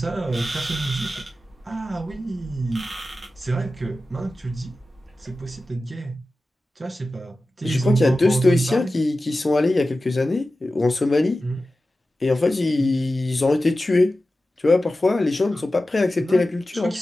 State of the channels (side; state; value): both; normal; correlation 0.94